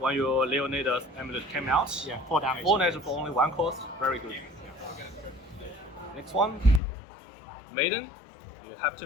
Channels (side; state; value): right; drops out; at 6.8 s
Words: your Leonidas amulet came out. Yeah, 4 damage. 4 damage for only 1 cost, very good. Next one, Maiden, you have